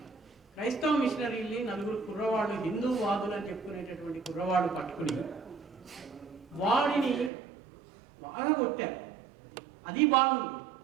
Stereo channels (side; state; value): left; drops out; at 7.3 s